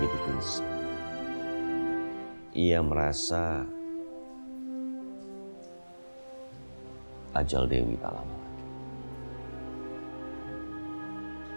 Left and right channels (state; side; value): inverted; both; correlation -1.00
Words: gelisah. Ia merasa ajal Dewi tak lama lagi.